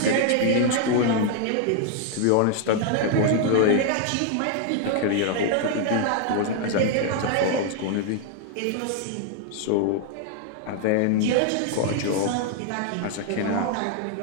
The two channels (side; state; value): both; different; correlation 0.00